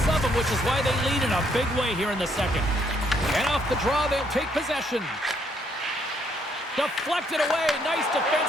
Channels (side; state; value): both; normal; correlation 0.70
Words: of them, which is why they lead in a big way here in the second. And off the draw, they'll take possession. Deflected away. Nice